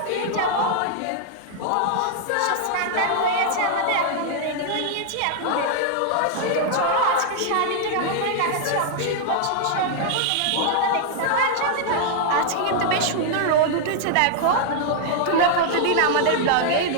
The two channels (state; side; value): different; both; correlation 0.00